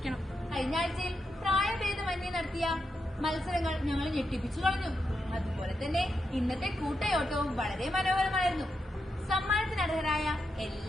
കഴിഞ്ഞ ആഴ്ചയിൽ പ്രായഭേദമന്യേ നടത്തിയ മത്സരങ്ങൾ ഞങ്ങൾ ഞെട്ടിപ്പിച്ചു കളഞ്ഞു. അതുപോലെ തന്നെ ഇന്നത്തെ കൂട്ടയോട്ടവും വളരെ മനോഹരമായിരുന്നു. സമ്മാനത്തിനർഹരായ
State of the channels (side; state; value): both; normal; correlation 0.84